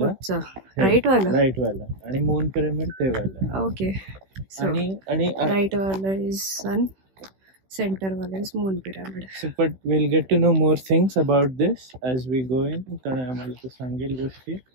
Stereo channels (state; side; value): late; left; 16 ms